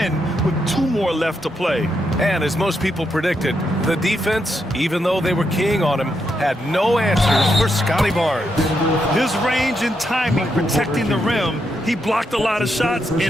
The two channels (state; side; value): normal; both; correlation 0.81